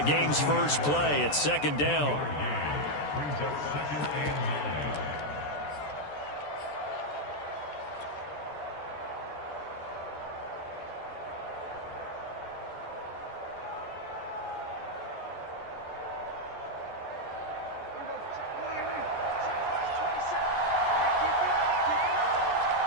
first play at second down. Brings up second and 9.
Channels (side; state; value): right; late; 14 ms